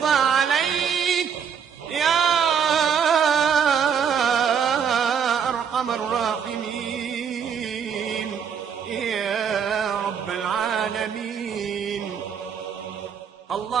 عليك يا أرحم الراحمين يا رب العالمين.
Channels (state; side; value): quieter; left; 7.4 dB